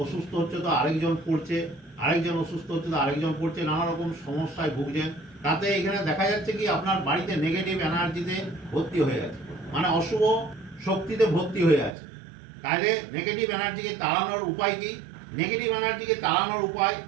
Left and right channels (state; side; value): drops out; left; at 12.0 s